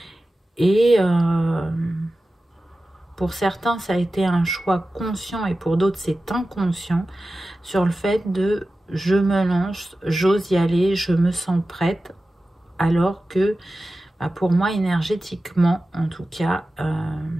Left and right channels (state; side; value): normal; both; correlation 0.94